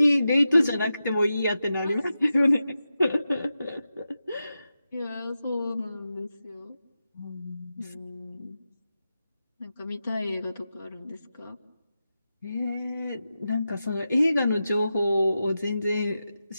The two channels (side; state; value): both; inverted; correlation -0.91